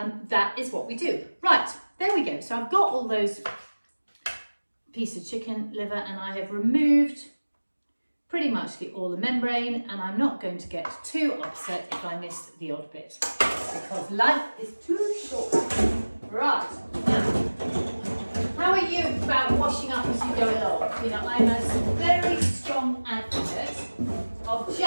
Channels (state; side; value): inverted; both; correlation -1.00